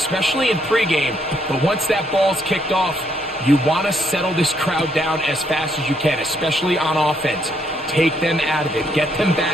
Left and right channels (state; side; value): normal; both; correlation 0.72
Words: in pregame. But once that ball's kicked off, you want to settle this crowd down as fast as you can, especially on offense. Take them out of it. Get them